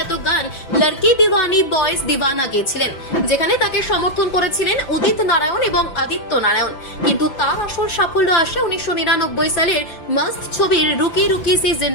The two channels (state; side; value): late; right; 5.9 ms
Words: গান লড়কি দিওয়ানি বয়েজ দিওয়ানা গেয়েছিলেন, যেখানে তাকে সমর্থন করেছিলেন উদিত নারায়ণ এবং আদিত্য নারায়ণ। কিন্তু তার আসল সাফল্য আসে 1999 সালের মাস্ট ছবির রুকি রুকি সি